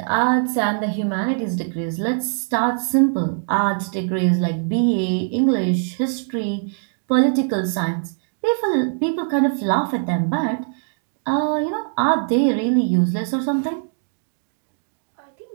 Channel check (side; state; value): left; silent; digital silence